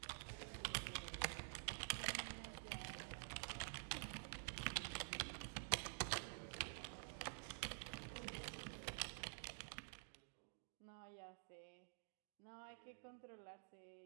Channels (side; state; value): left; silent; digital silence